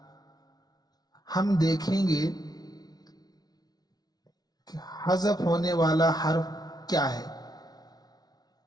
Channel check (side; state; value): right; late; 0.19 ms